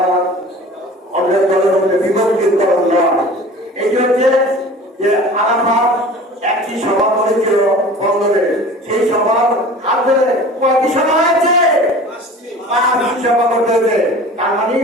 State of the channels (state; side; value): normal; both; correlation 0.41